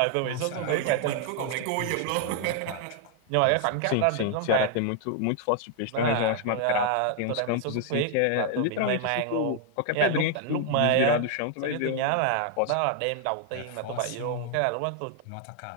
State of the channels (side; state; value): both; different; correlation 0.00